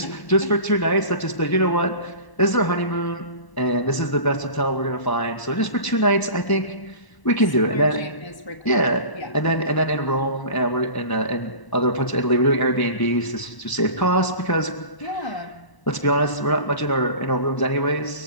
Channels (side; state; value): right; late; 1.0 ms